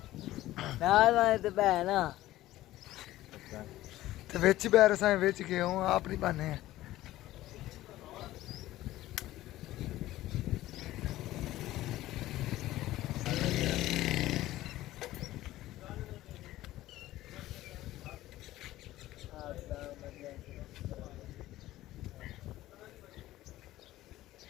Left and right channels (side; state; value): right; quieter; 15.6 dB